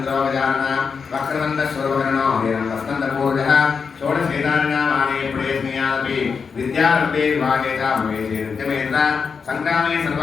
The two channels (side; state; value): right; quieter; 5.6 dB